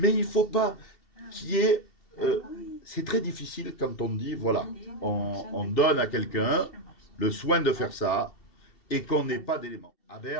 il ne faut pas qu'il y ait... c'est très difficile quand on dit, voilà, on donne à quelqu'un le soin de faire ça et qu'on n'ait pas d'éléments. À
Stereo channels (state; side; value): late; right; 2.7 ms